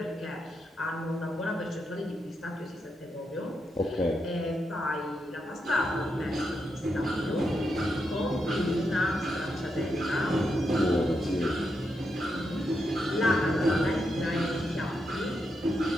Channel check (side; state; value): both; normal; correlation 0.84